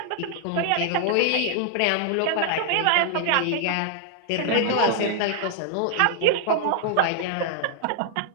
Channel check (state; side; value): different; both; correlation 0.00